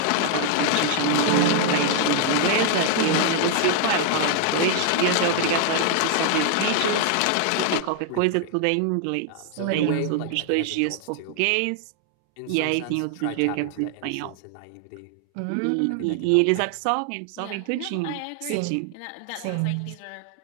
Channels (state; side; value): different; both; correlation 0.00